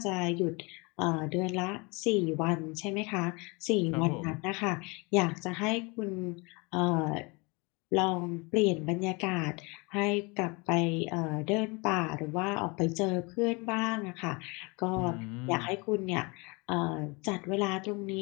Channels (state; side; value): quieter; right; 28.3 dB